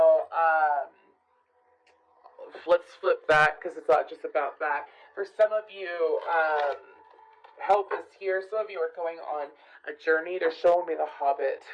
let's flip that because it's not just about that. For some of you, help is here. Some of you are going on a journey. They're showing me the Hobbit.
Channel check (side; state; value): both; identical; correlation 1.00